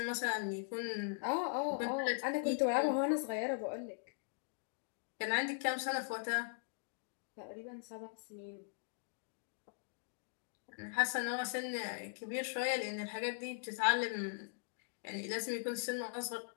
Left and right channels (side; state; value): right; silent; digital silence